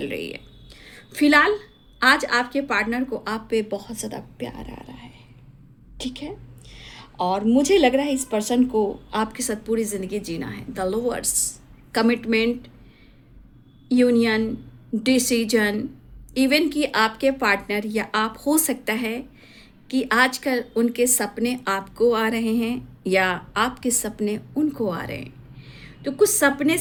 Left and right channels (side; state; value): both; identical; correlation 1.00